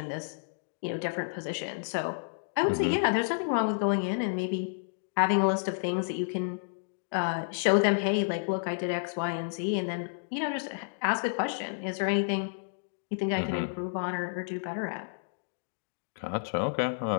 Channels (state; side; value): silent; right; digital silence